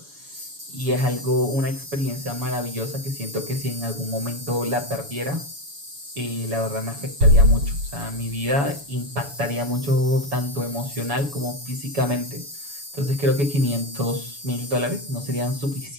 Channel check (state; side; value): late; left; 7.1 ms